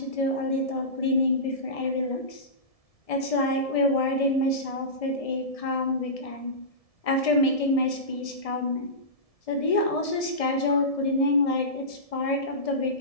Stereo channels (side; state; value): right; late; 1.7 ms